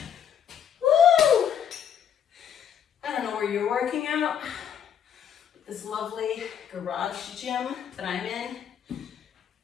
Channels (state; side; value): quieter; right; 8.9 dB